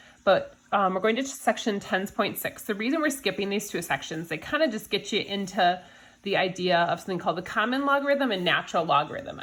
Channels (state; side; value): identical; both; correlation 1.00